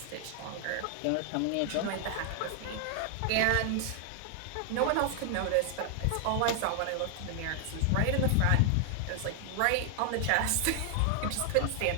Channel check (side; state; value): both; different; correlation 0.00